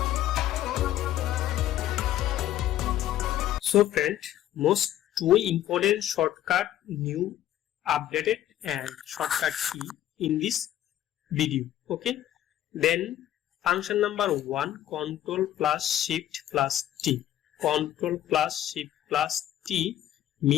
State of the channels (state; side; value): quieter; right; 12.4 dB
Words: So friend, most two important shortcut new updated and shortcut key in this video. Okay, then function number 1, control plus shift plus T. Control plus shift plus T